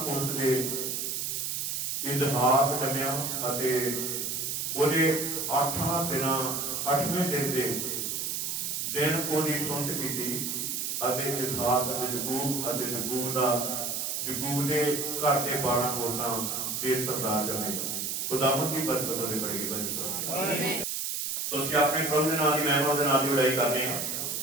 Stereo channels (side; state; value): right; noise; hiss, 2 dB below the sound